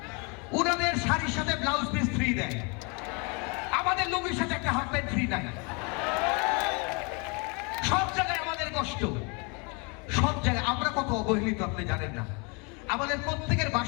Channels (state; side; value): quieter; right; 31.9 dB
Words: ওনাদের শাড়ির সাথে ব্লাউজ পিস ফ্রি দেয়, আমাদের লুঙ্গির সাথে একটা হাফ প্যান্ট ফ্রি নাই। সব জায়গায় আমাদের কষ্ট, সব জায়গায় আমরা কত অবহেলিত আপনি জানেন না। আমাদের প্রত্যেকের